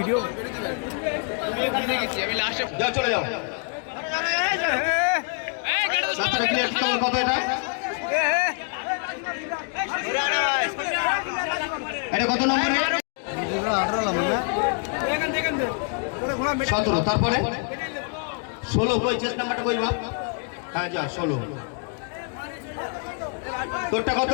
যাও চলে যাও কত এটা এটা কত নম্বর 17 তারপরে 16 কই চেস নাম্বারটা কই বাপ হ্যাঁ যা 16 তোরটা কত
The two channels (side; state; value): right; quieter; 39.2 dB